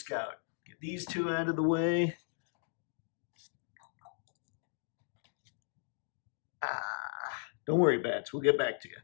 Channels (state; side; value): silent; right; digital silence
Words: Get these two out of the way. Don't worry, Bats, we'll get back to you.